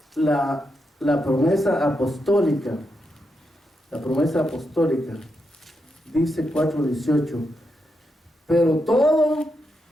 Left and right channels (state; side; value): normal; both; correlation 0.84